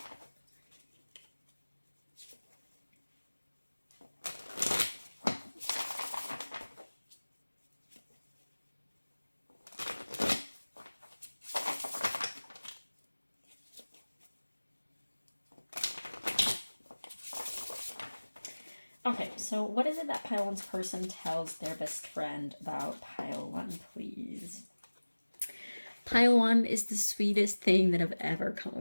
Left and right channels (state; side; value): inverted; both; correlation -1.00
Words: Okay, so what is it that pile one's person tells their best friend about pile one, please? Pile one is the sweetest thing that I've ever come